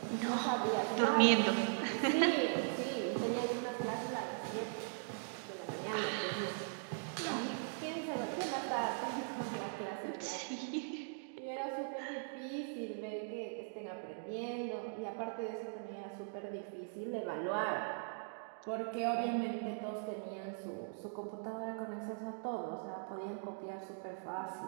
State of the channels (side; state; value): left; silent; digital silence